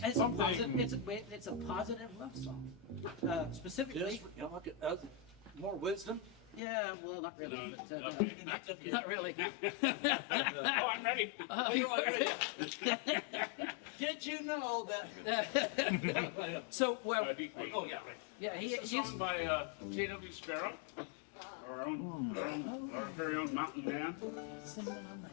It's a positive love song. Specifically, More wisdom? yeah, well, not really. No, but, okay. Not really. Oh, I'm ready. Did you know that? So, well, Deep Creek. Oh, yeah, right. yeah, It's a song by J.W. Sparrow, our very own mountain man.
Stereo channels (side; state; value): right; drops out; at 6.6 s